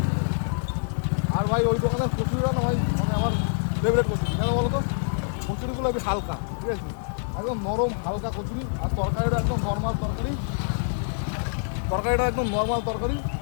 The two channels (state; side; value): silent; right; 61 dB below the other